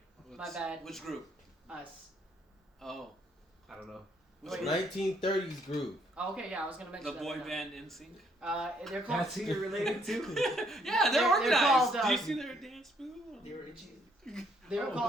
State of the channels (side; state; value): both; normal; correlation 0.69